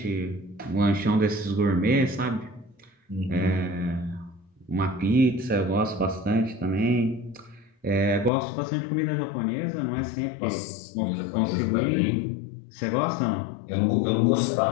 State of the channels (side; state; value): right; drops out; at 8.3 s